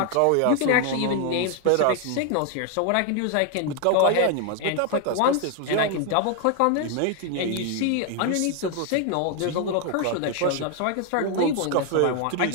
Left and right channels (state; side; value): different; both; correlation 0.01